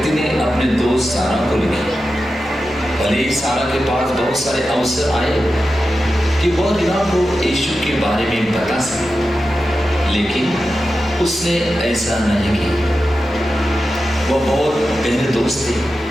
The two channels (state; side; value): normal; both; correlation 0.91